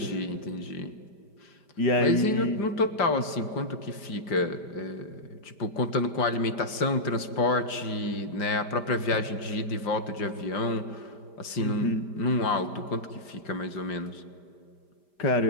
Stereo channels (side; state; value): right; late; 5.0 ms